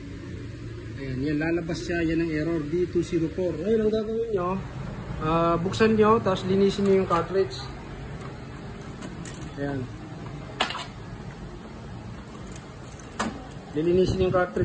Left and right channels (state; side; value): identical; both; correlation 1.00